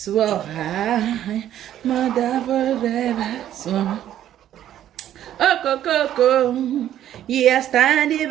I am a down for driver, so oh Coco, yeah, standing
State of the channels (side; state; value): left; quieter; 11.6 dB